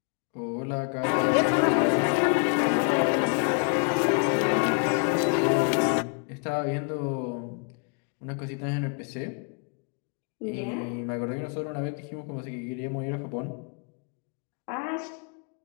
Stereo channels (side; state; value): right; quieter; 39.4 dB